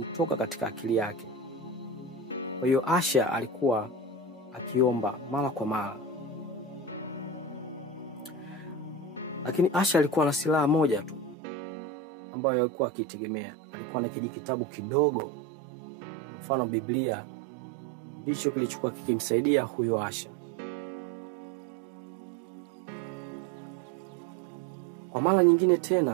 katika akili yake. Kwa hiyo Asha alikuwa akiomba mara kwa mara. Lakini Asha alikuwa na silaha moja tu ambayo alikuwa akitegemea. Alikuwa na kijitabu kidogo, mfano Biblia, ndicho kilichokuwa kikimsaidia huyo Asha. Kwa mara nyingine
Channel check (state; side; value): drops out; left; at 11.4 s